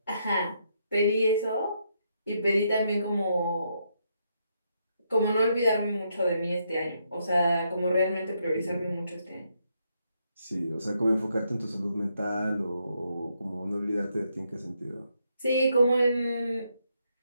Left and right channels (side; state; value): both; inverted; correlation -0.77